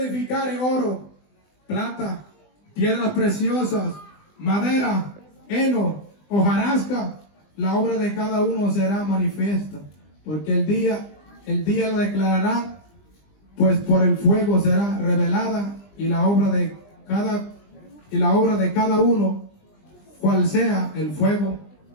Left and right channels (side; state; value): right; late; 20 ms